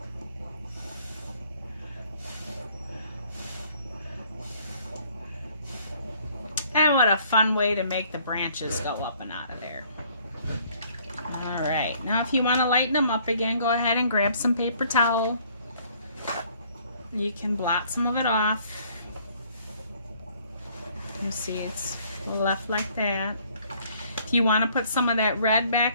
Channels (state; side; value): inverted; both; correlation -0.61